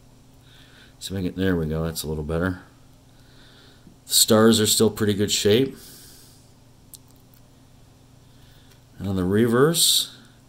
So there we go. That's a little better. The stars are still pretty good shape. And on the reverse,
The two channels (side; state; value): both; identical; correlation 1.00